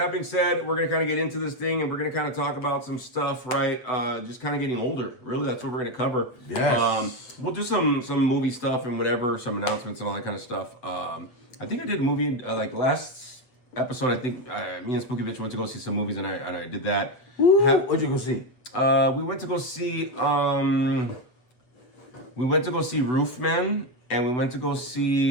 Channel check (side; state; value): right; late; 8.0 ms